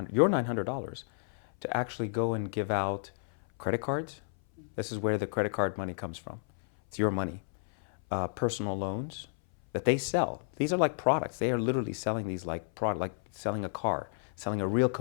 your $900 to actually go and give out credit cards. This is where the credit card money comes from. It's your money. Personal loans that they sell. These are like products. They are literally selling these like selling a car, selling a real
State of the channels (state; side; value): silent; right; 57 dB below the other